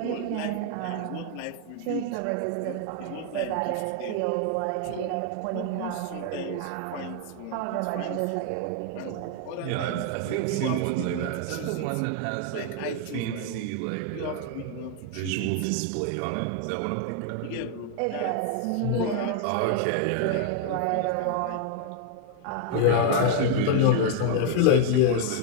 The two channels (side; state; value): both; different; correlation 0.00